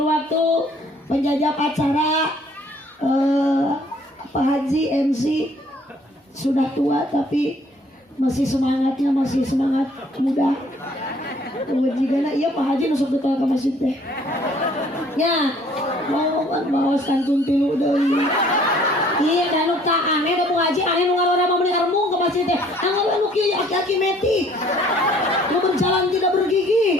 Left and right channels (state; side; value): normal; both; correlation 0.59